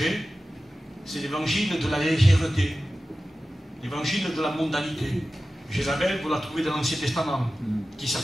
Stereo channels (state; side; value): normal; both; correlation 0.95